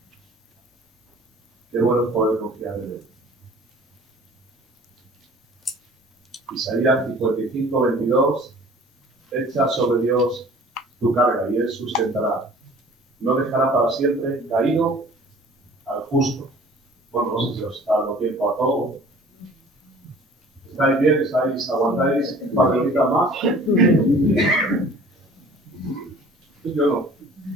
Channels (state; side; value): normal; both; correlation 0.49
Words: Qué bueno es poder confiar en Él. Isaías 55, 22, echa sobre Dios tu carga y Él sustentará. No dejará para siempre caído al justo. Bueno, no sé si os está dando tiempo a todo. ¿Estáis bien? ¿Aguantáis un par de horitas más? Yo no.